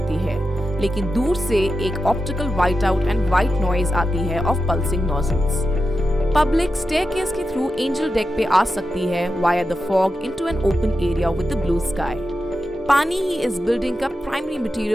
है, लेकिन दूर से एक optical white out and white noise आती है of pulsing nozzles. Public staircase के थ्रू एंजल डेक पे आ सकती है via the fog into an open area with the blue sky. पानी ही इस बिल्डिंग का प्राइमरी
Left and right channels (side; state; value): both; normal; correlation 0.89